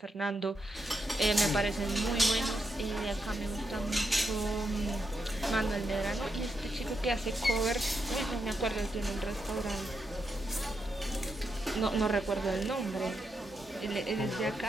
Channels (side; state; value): both; normal; correlation 0.83